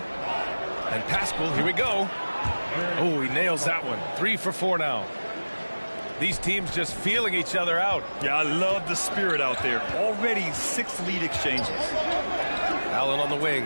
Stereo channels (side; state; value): both; inverted; correlation -1.00